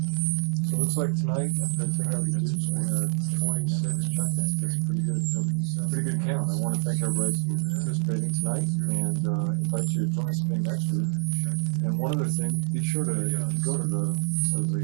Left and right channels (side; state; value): left; silent; digital silence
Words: So it looks like tonight, after I take out the dudes, we had 26 check-ins. That's a pretty good count. I want to thank everybody for participating tonight and invite you to join us again next week. And one other thing, be sure to go to the